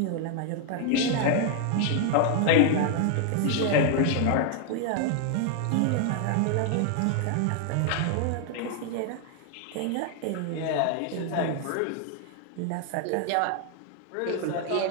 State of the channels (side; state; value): both; different; correlation 0.00